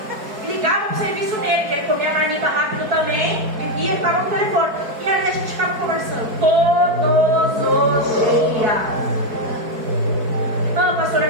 Ligava pro serviço dele, que ele comia a marmita rápido também, vivia e estava no telefone. E aí a gente ficava conversando todos os dias. Não, pastora,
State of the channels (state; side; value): late; left; 4.6 ms